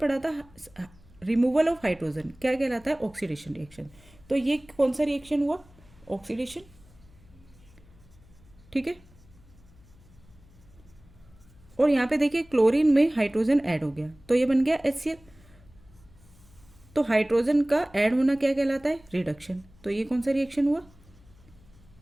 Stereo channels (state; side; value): noise; left; hum, 26 dB below the sound